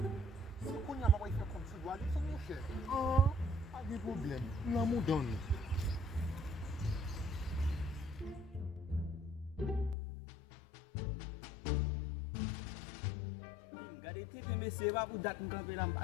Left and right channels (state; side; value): drops out; right; at 10.0 s